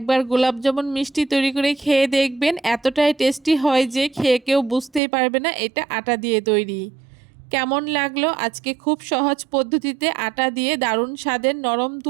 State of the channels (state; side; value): drops out; left; at 5.0 s